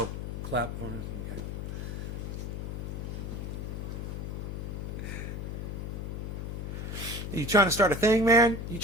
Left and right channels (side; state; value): left; noise; hum, 5 dB below the sound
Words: clap. Okay. You trying to start a thing, man? You